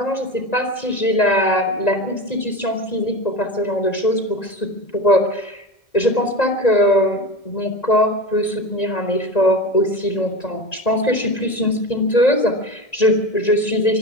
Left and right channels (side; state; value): right; late; 1.9 ms